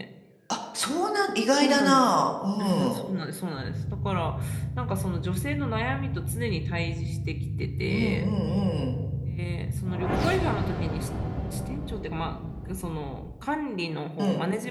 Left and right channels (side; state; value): both; identical; correlation 1.00